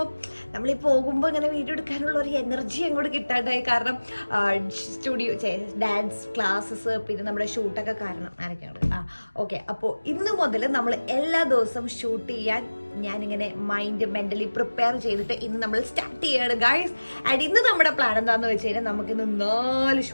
നമ്മൾ ഈ പോകുമ്പോൾ ഇങ്ങനെ വീഡിയോ എടുക്കാനുള്ള ഒരു എനർജി അങ്ങോട്ട് കിട്ടാണ്ടായി. കാരണം സ്റ്റുഡിയോ ഡാൻസ് ക്ലാസ്സസ് പിന്നെ നമ്മുടെ ഷൂട്ടൊക്കെ കാരണം ആരൊക്കെയാണ്. ഓക്കെ, അപ്പോൾ ഇന്ന് മുതൽ നമ്മൾ എല്ലാ ദിവസവും ഷൂട്ട് ചെയ്യാൻ ഞാനിങ്ങനെ മെന്റലി പ്രിപ്പയർ ചെയ്തിട്ട് ഇന്ന് നമ്മൾ സ്റ്റാർട്ട് ചെയ്യാണ് ഗൈസ്. ആൻഡ് ഇന്ന് നമ്മുടെ പ്ലാൻ എന്താണെന്ന് വെച്ച് കഴിഞ്ഞാൽ നമുക്കിന്ന് 4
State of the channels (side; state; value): both; inverted; correlation -1.00